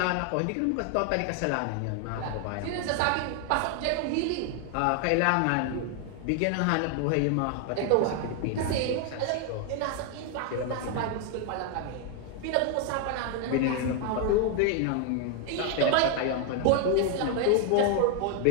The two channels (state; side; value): different; both; correlation 0.01